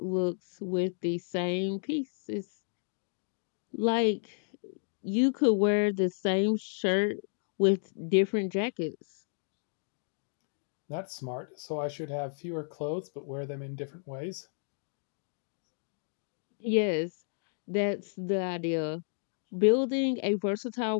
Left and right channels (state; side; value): silent; right; digital silence